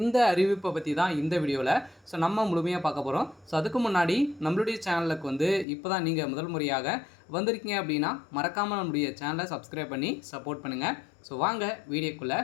இந்த அறிவிப்பை பற்றி தான் இந்த வீடியோவில் நம்ம முழுமையாக பார்க்க போகிறோம். ஸோ அதுக்கு முன்னாடி நம்மளுடைய சேனலுக்கு இப்போ தான் நீங்கள் முதல் முறையாக வந்திருக்கீங்க அப்படின்னா, மறக்காமல் நம்மளுடைய சேனலை சப்ஸ்கிரைப் பண்ணி சப்போர்ட் பண்ணுங்கள். ஸோ வாங்க வீடியோக்குள்ளே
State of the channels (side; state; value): right; drops out; at 5.7 s